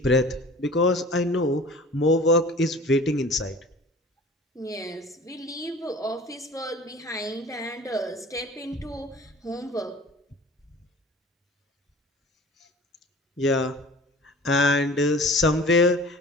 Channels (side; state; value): both; normal; correlation 0.43